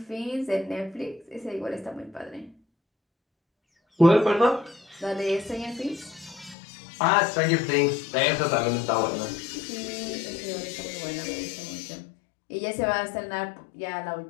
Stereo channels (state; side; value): drops out; right; at 6.6 s